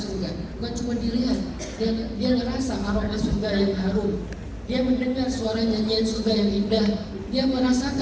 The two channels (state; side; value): identical; both; correlation 1.00